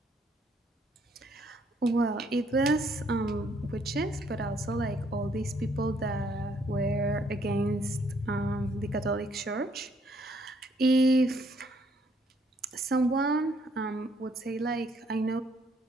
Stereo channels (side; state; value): both; normal; correlation 0.68